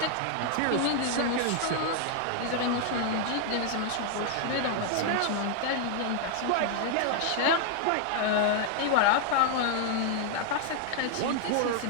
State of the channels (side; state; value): both; different; correlation 0.00